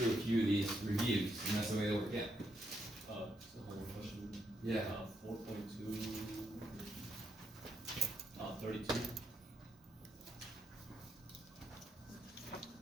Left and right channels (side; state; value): both; normal; correlation 0.78